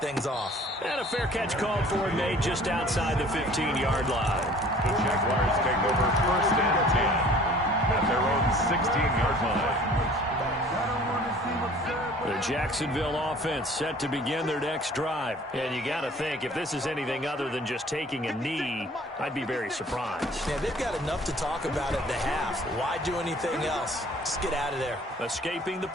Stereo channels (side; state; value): both; normal; correlation 0.51